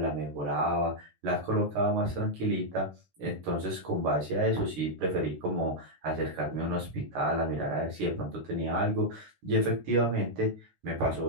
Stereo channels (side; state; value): left; late; 16 ms